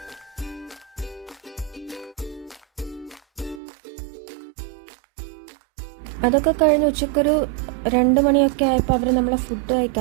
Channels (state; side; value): drops out; left; at 3.6 s